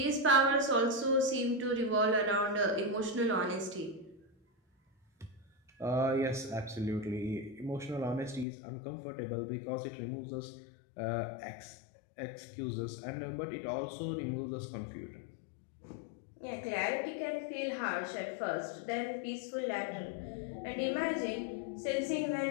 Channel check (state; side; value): drops out; right; at 8.5 s